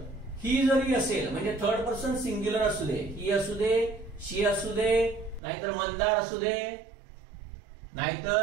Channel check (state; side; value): drops out; left; at 5.4 s